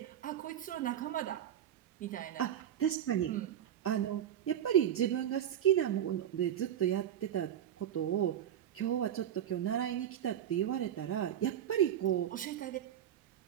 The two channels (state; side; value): quieter; left; 10.4 dB